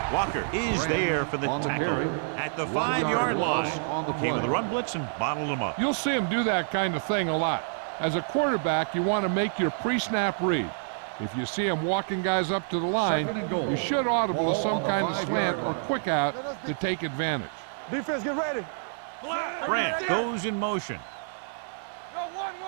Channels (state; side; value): silent; left; digital silence